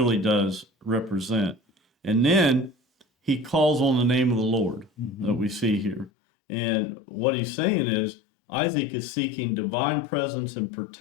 does represent. And then he calls on the name of the Lord that we see here. And what he's saying is Isaac is seeking divine presence and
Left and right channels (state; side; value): drops out; right; at 6.1 s